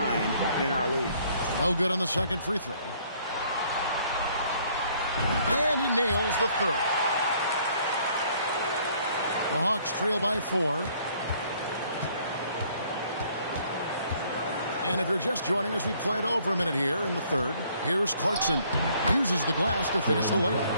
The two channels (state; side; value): inverted; both; correlation -0.62